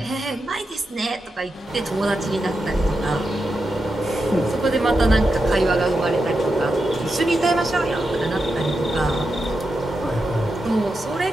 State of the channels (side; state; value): both; normal; correlation 0.88